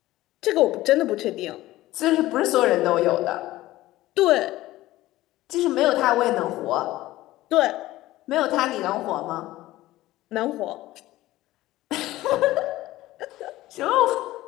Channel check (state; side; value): quieter; right; 16.6 dB